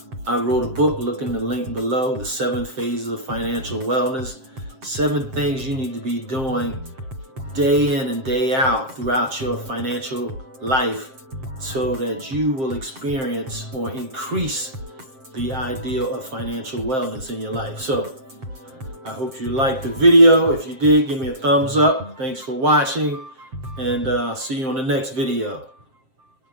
I wrote a book, look in the link below, The 7 Phases of Financial Wellness. 7 things you need to be doing day in and day out throughout your financial life so that you will experience or increase the ideal of financial wellness in your life. So I hope you liked the video. If you did, give me a thumbs up. Thanks for watching, and I'll see you on the next video.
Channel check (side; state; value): left; late; 7.6 ms